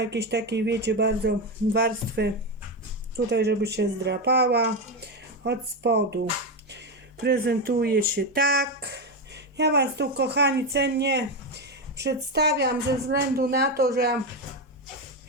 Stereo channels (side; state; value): both; normal; correlation 0.11